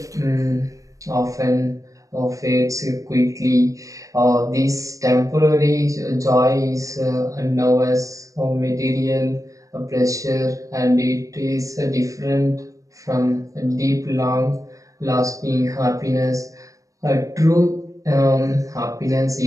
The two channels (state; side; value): late; left; 0.16 ms